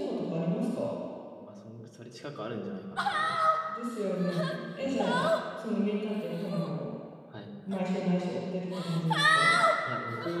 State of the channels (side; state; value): both; identical; correlation 1.00